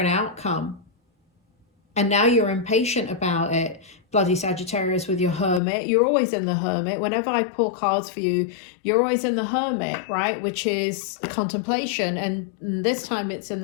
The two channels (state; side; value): drops out; right; at 5.6 s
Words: outcome, and now you're impatient about it. Bloody Sagittarius with your Hermit. You're always in the Hermit. Whenever I pull cards for you, you're always in the Hermit, right? Which is contemplation, and this time it's in